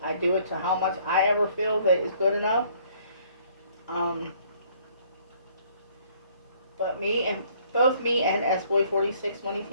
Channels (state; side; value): inverted; both; correlation -0.61